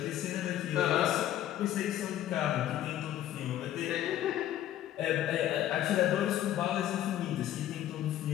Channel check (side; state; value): right; quieter; 12.3 dB